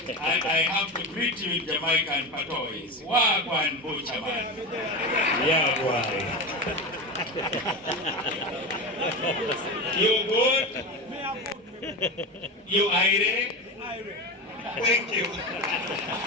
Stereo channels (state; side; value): normal; both; correlation 0.21